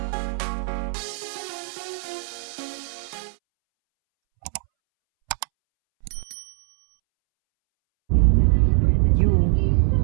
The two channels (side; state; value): left; silent; 64 dB below the other